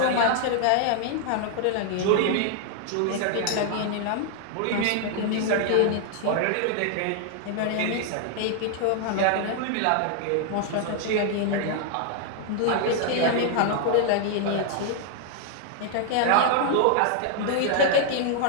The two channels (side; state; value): both; different; correlation 0.00